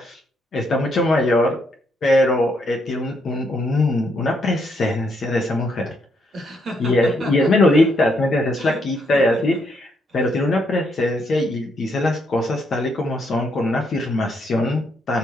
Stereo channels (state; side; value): normal; both; correlation 0.75